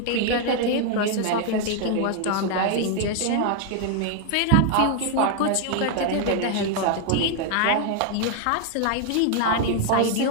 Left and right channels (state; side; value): different; both; correlation 0.00